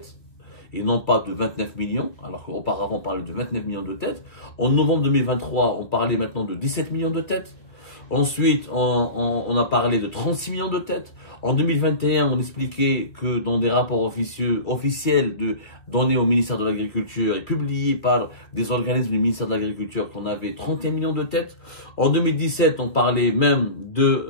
et non pas de 29 millions, alors qu'auparavant on parlait de 29 millions de têtes. En novembre 2023, on parlait maintenant de 17 millions de têtes. Ensuite, on a parlé de 36 millions de têtes. En 2021, on expliquait que dans des rapports officiels donnés au ministère de l'Agriculture et publiés par des organismes du ministère de l'Agriculture qu'on avait 31 millions de têtes. En 2017, on parlait même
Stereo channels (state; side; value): late; right; 2.0 ms